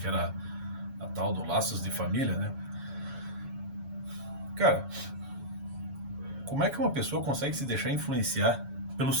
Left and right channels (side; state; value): left; late; 7.1 ms